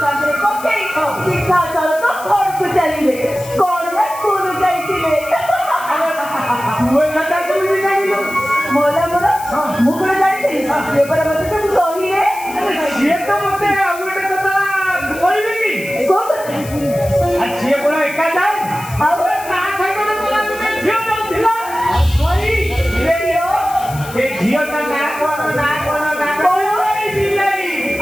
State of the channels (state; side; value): noise; left; hiss, 16 dB below the sound